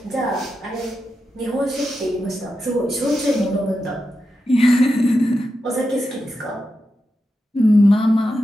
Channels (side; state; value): both; normal; correlation 0.88